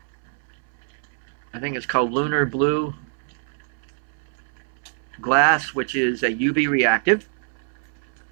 think it's called Lunar Blue glass, which is a UV reactive.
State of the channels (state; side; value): silent; left; 62 dB below the other